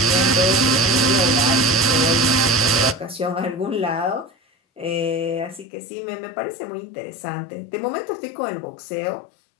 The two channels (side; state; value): right; drops out; at 5.7 s